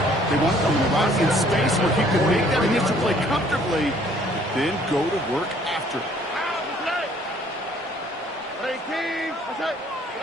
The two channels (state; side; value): normal; both; correlation 0.59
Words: They wanted them around in space where he could make that initial play comfortably, then go to work after.